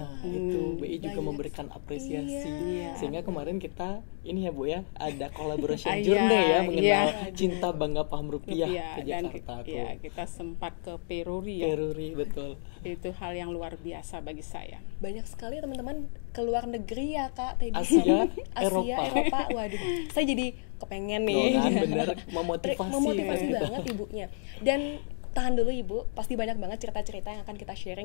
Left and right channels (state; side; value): silent; right; digital silence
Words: itu BI juga memberikan apresiasi. Sehingga kemarin kita ini ya Bu ya, ada collaboration journey ya mengenal cinta bangga paham rupiah ke Jakarta. Dan kita sempat ke Peruri ya. Peruri, betul. Itu hal yang luar biasa bagi saya. Banyak sekali teman-teman ke luar negeri ya Kak Teddy. Asia, Eropa. Waduh, saya jadi kepengen nih. Bener, memotivasi banget ibunya. Dan tahan dulu Ibu, pasti banyak banget cerita-cerita yang akan kita